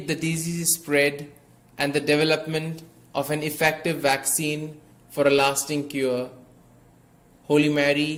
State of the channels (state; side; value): identical; both; correlation 1.00